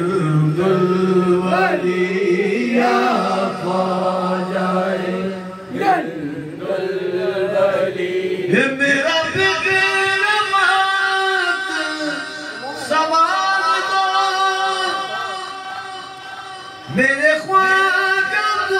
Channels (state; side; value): identical; both; correlation 1.00